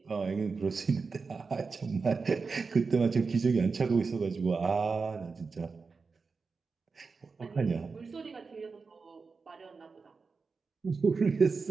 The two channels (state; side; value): quieter; left; 4.6 dB